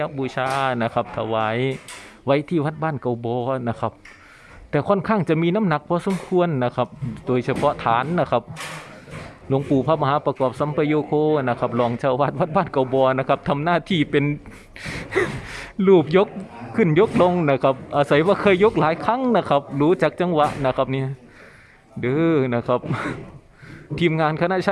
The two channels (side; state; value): both; identical; correlation 1.00